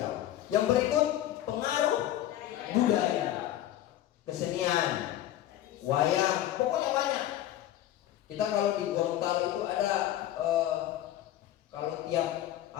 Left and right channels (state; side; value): quieter; right; 13.0 dB